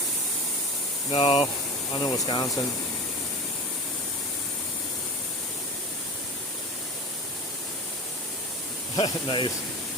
No, I'm in Wisconsin. Nice.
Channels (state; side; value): normal; both; correlation 0.31